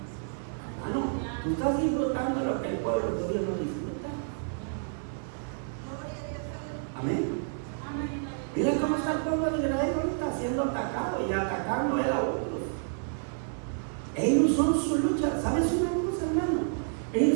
Hermano, tú estás disfrutando lo que el pueblo de Dios no disfruta. Amén. Mira cómo está el pueblo de Israel ahorita siendo atacado y atacando él a otros. Ellos son su lucha. ¿Sabes una cosa, hermano?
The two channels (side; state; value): left; silent; 58 dB below the other